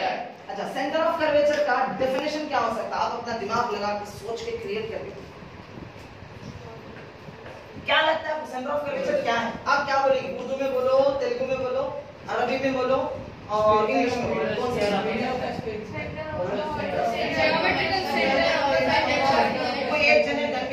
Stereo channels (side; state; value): both; identical; correlation 1.00